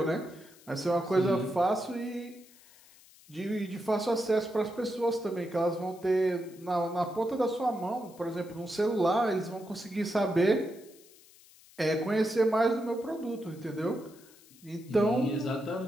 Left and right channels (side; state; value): left; noise; hiss, 25 dB below the sound